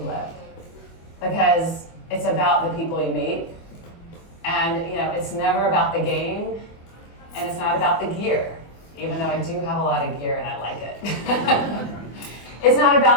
lived, because it's about the people you meet, and it's never about the game, and it's not about the gear, even though I do have a lot of gear and I like it. It's not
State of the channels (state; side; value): late; right; 24 ms